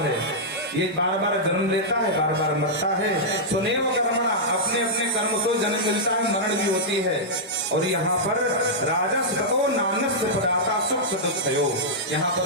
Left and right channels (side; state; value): both; normal; correlation -0.09